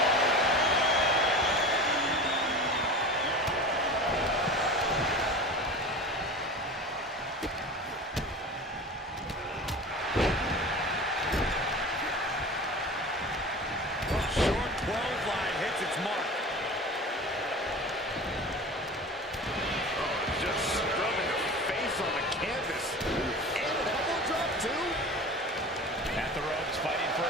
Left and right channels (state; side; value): normal; both; correlation 0.35